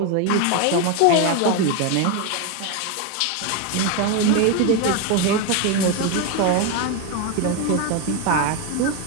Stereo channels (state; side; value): different; both; correlation 0.02